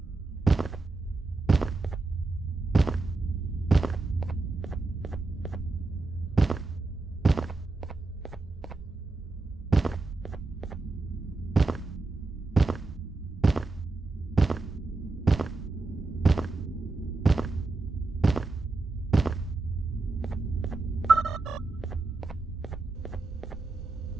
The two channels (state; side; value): quieter; left; 3.5 dB